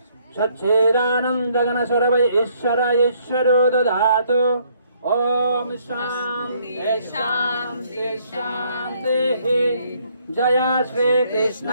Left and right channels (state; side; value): inverted; both; correlation -0.67